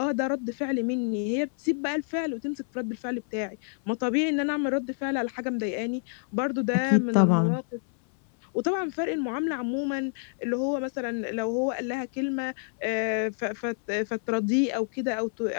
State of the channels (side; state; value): right; silent; 59 dB below the other